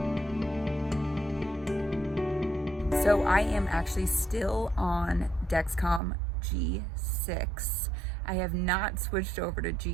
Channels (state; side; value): drops out; left; at 6.0 s